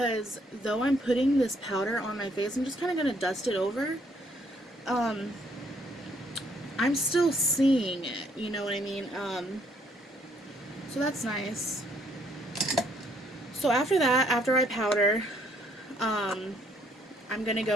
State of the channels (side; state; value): both; normal; correlation 0.66